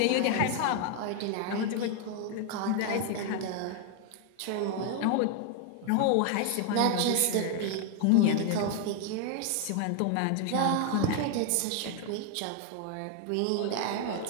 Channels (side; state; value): both; different; correlation 0.00